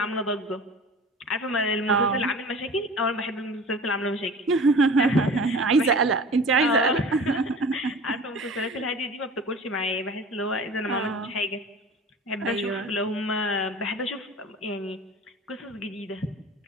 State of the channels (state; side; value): normal; both; correlation 0.39